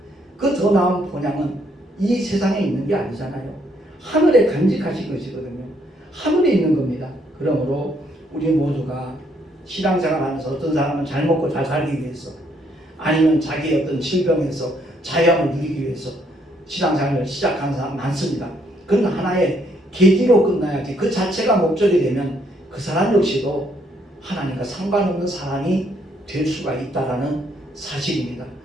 그 더 나은 본향은 이 세상에 있는 게 아니잖아요. 하늘에 간직하신 것이거든요. 하늘에 있는 겁니다. 그러므로 우리 모두가 신앙생활하면서 어떤 사람은 잘 먹고 잘 살기 위해서, 아니면 자기의 어떤 질병에서 자유함을 누리기 위해서 신앙생활을 시작하는 사람 많습니다. 그건 하나의 계기로 끝나야지 그 자체가 목적이 되면 그 사람 역시도 하나님과 상관없는 사람이 될 수가 있다는 사실입니다.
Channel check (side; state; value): both; normal; correlation 0.70